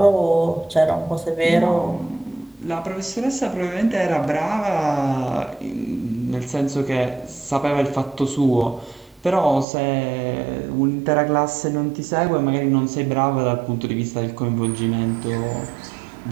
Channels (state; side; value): drops out; left; at 9.7 s